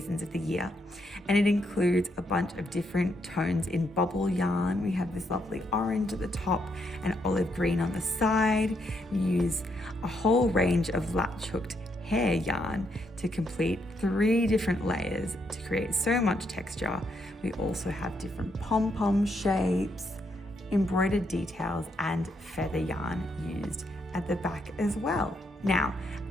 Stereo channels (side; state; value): both; normal; correlation 0.77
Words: of the year. And it includes a bunch of different tones in bobble yarn. We have this lovely orange at the top and olive green on the side. We use a whole range of latch hooked hair yarn to complete 3 different layers to create so much texture. We also have different pom-pom shapes, embroidered details, and feather yarn used at the back as well. Now,